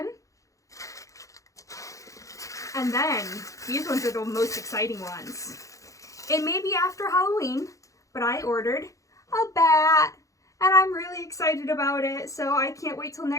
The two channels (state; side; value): late; right; 0.16 ms